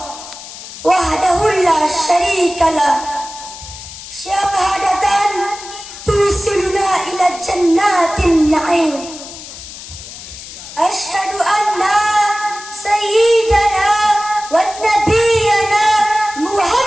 وحده لا شريك له شهادة توصلنا إلى جنات النعيم أشهد أن سيدنا ونبينا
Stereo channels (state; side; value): noise; left; hiss, 14 dB below the sound